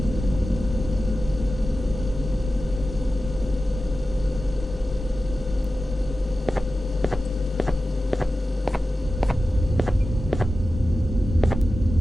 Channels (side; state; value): both; normal; correlation 0.93